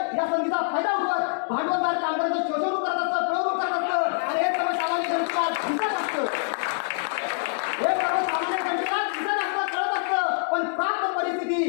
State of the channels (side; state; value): right; silent; digital silence